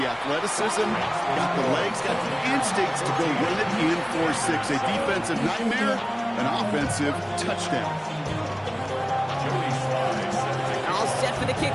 athleticism, got the legs, got the instincts to go run it in for 6. A defensive nightmare, an offensive touchdown. All set for the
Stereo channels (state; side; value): identical; both; correlation 1.00